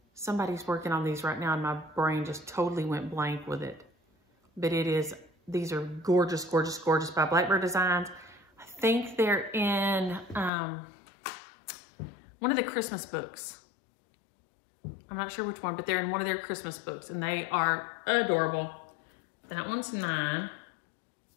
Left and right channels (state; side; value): drops out; right; at 10.5 s